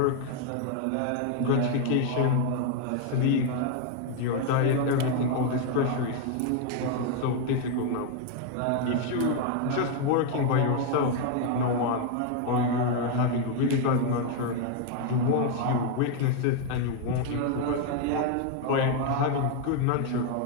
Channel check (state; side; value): different; both; correlation 0.01